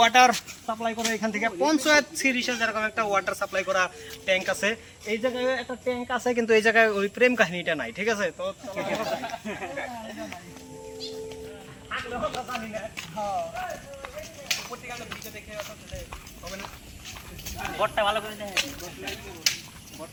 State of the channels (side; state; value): both; identical; correlation 1.00